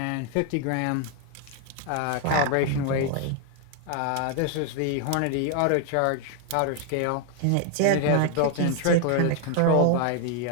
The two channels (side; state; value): both; different; correlation 0.00